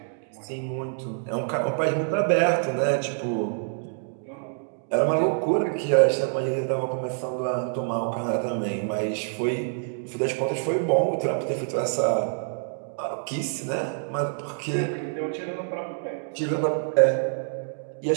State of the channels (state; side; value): silent; left; digital silence